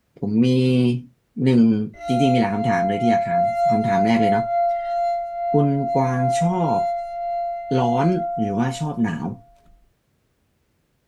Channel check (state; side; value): identical; both; correlation 1.00